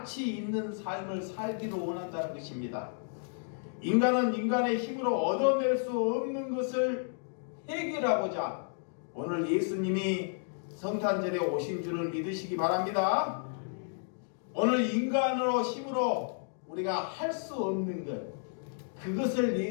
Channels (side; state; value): right; silent; digital silence